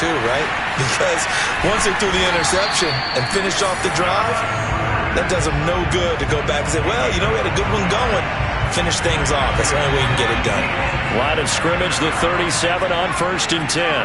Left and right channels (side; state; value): both; identical; correlation 1.00